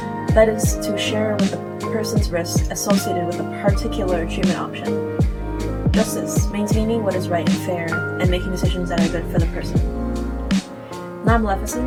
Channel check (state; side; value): identical; both; correlation 1.00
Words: That is to share with the person's risks associated with a particular treatment option. Justice, maintaining what is right and fair, and making decisions that are good for the person.